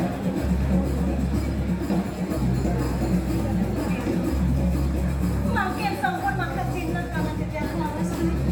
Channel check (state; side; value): identical; both; correlation 1.00